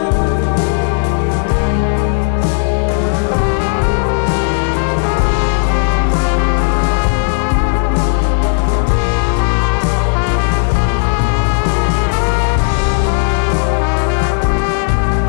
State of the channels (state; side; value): silent; right; digital silence